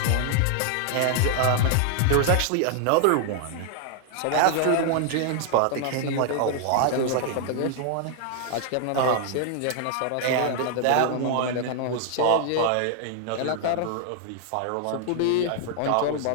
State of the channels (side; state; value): both; different; correlation 0.00